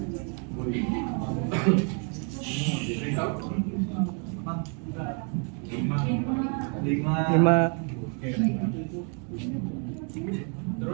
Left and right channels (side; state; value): left; quieter; 38.8 dB